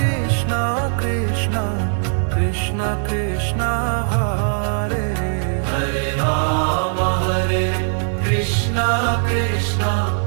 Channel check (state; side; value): silent; left; digital silence